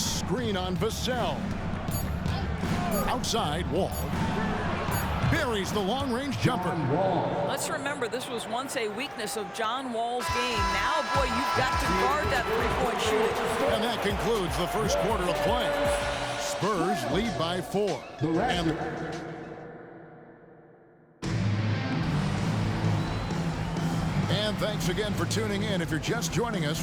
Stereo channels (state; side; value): identical; both; correlation 1.00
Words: screen on Vassell. Outside, Wall. Buries the long-range jumper. Let's remember, this was once a weakness of John Wall's game. Now, boy, you've got to guard that three-point shooting. And that concludes the first quarter of play. Spurs lead by 4. And thanks again for tuning in. If you're just joining us,